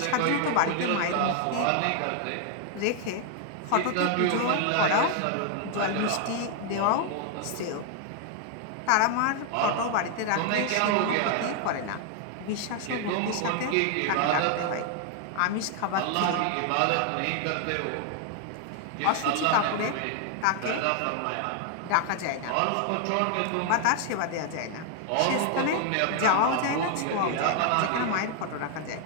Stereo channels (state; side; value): different; both; correlation 0.00